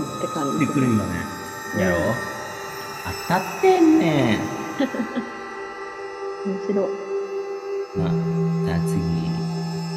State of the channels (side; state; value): both; identical; correlation 1.00